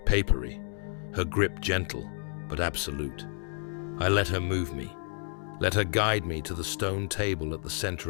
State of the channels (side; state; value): right; silent; 58 dB below the other